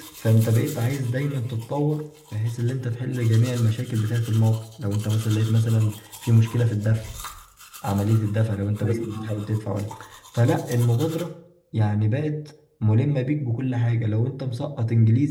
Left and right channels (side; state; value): both; identical; correlation 1.00